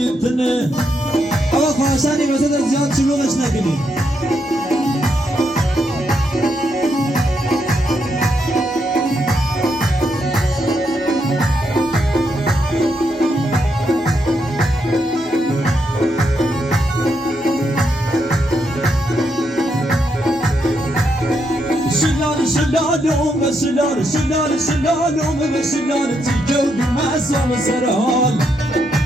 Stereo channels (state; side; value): normal; both; correlation 0.79